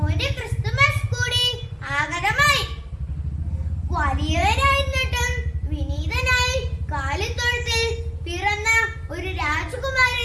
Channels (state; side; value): identical; both; correlation 1.00